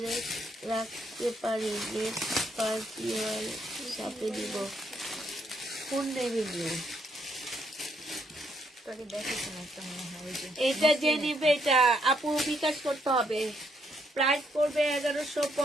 রাখতে পারি? নেক্সট পার্টি সাথে দিব। কোন নেভি ব্লু? এটা যে নিবে এটা আপু বিকাশ করতে হবে। প্রাইস পড়বে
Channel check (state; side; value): normal; both; correlation 0.73